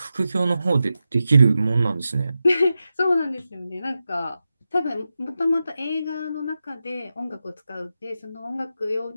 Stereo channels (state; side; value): inverted; both; correlation -0.91